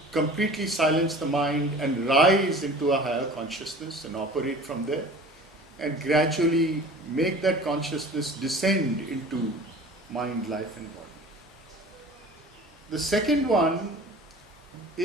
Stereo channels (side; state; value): both; normal; correlation 0.42